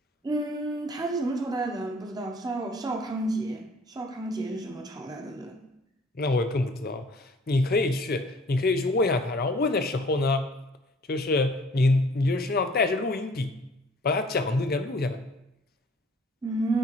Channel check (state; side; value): normal; both; correlation 0.54